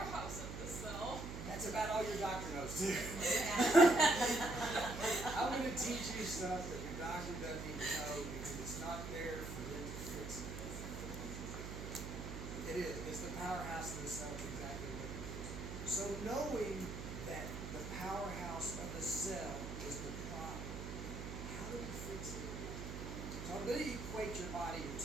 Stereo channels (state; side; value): noise; right; hum, 7 dB below the sound